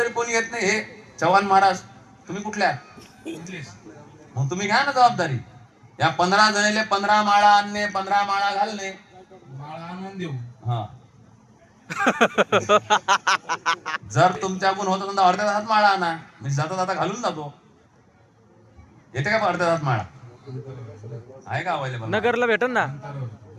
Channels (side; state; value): both; identical; correlation 1.00